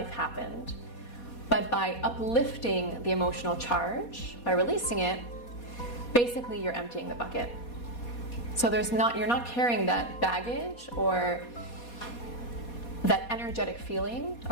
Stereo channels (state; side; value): late; right; 4.2 ms